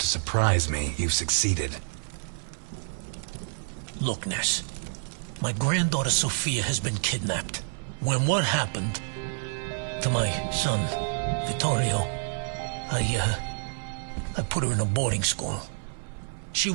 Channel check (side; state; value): left; silent; 59 dB below the other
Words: surprise me, you've succeeded. Look, Ness. My granddaughter Sophia has been kidnapped. When what happened to my son, Vittorio, I put her in a boarding school. She